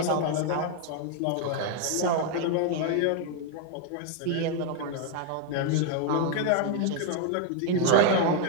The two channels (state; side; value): different; both; correlation 0.00